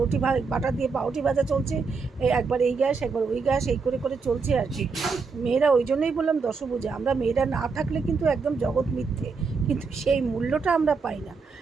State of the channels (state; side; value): quieter; left; 4.8 dB